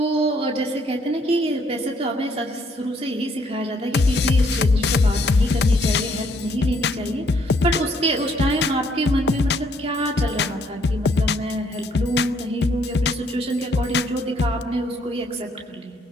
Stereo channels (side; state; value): both; normal; correlation 0.67